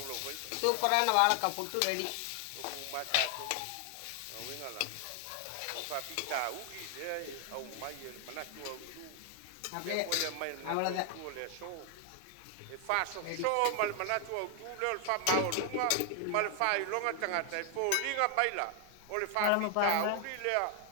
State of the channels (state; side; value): different; both; correlation 0.00